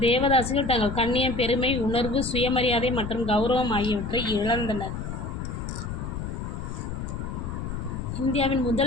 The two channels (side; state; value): left; noise; rumble, 6 dB below the sound